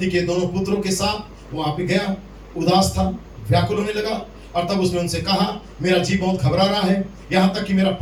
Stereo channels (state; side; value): identical; both; correlation 1.00